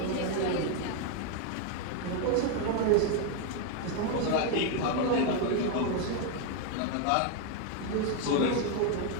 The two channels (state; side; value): different; both; correlation 0.01